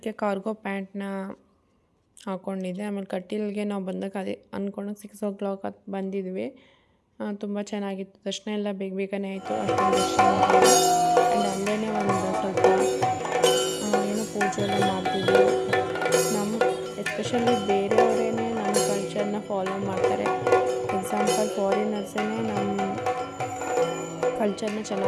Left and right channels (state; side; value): identical; both; correlation 1.00